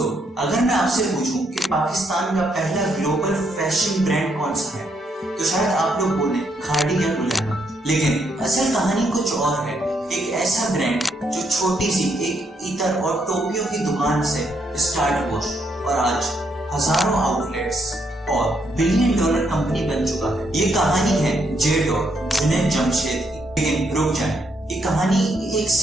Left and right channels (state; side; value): normal; both; correlation 0.75